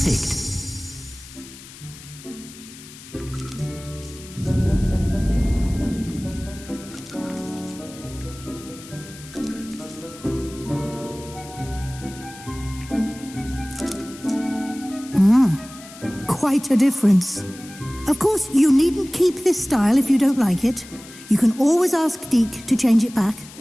Quite a difference. Of course, you needn't keep this style if you don't like it. You can always ask Deke to change it back.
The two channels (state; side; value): noise; left; hiss, 18 dB below the sound